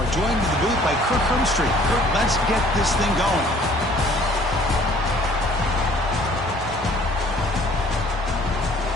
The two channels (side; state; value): both; normal; correlation 0.55